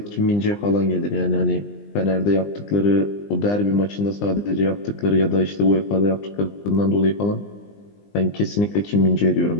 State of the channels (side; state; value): right; late; 20 ms